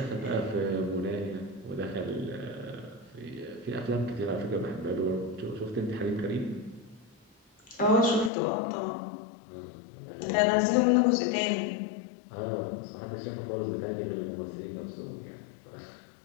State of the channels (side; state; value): right; drops out; at 8.3 s